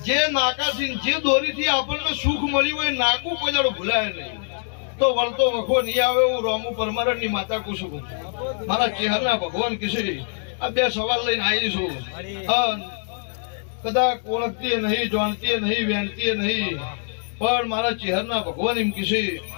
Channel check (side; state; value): right; silent; digital silence